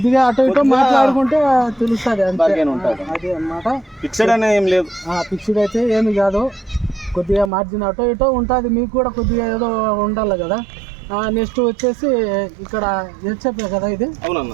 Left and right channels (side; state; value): left; drops out; at 7.5 s